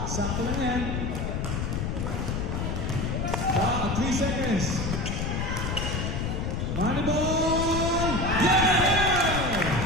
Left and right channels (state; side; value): noise; left; rumble, 1 dB below the sound